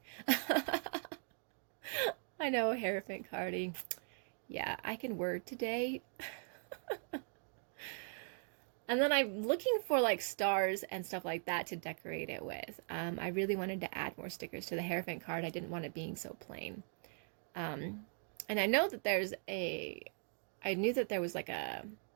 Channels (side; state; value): left; silent; 51 dB below the other